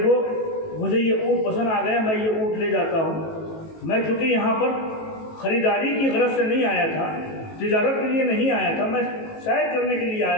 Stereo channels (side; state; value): right; late; 18 ms